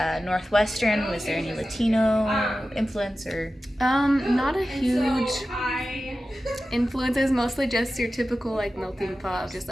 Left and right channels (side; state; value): both; normal; correlation 0.94